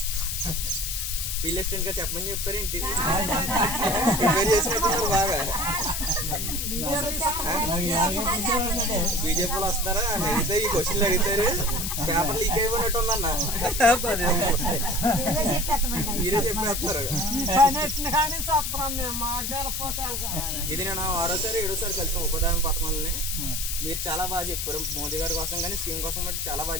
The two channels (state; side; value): noise; left; hiss, 2 dB below the sound